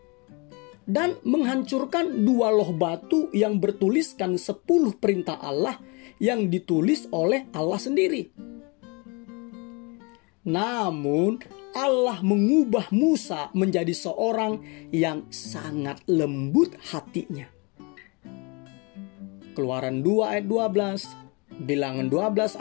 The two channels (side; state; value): right; quieter; 29.7 dB